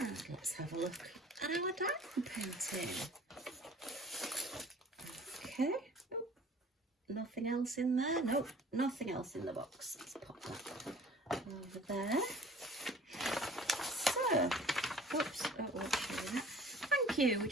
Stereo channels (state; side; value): normal; both; correlation 0.49